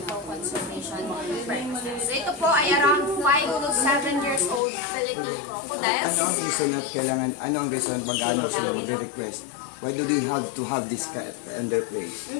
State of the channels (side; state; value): right; drops out; at 4.6 s